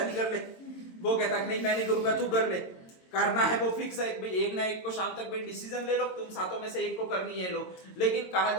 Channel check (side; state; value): right; late; 22 ms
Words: कर ले। वो कहता नहीं मैं नहीं करूंगा, तू कर ले। करना है वो फिक्स है भाई, एक ना एक को शाम तक भाई डिसीजन ले लो, तुम सातों में से एक को करनी है लो। लेकिन कहा